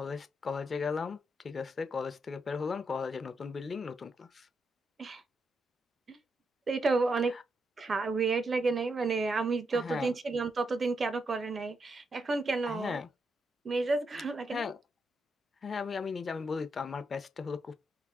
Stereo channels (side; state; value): both; normal; correlation 0.81